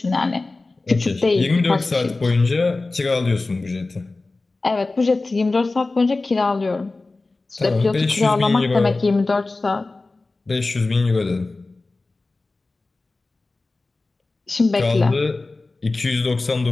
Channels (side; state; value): right; quieter; 3.4 dB